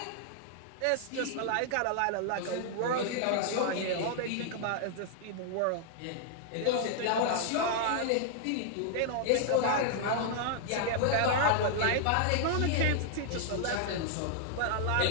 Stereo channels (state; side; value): different; both; correlation -0.01